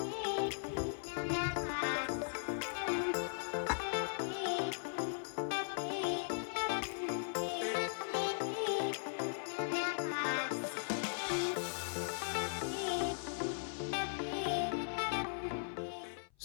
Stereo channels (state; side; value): silent; right; 52 dB below the other